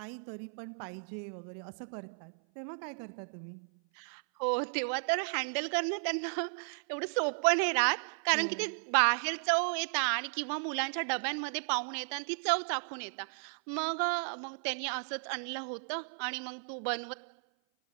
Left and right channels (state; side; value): silent; left; 55 dB below the other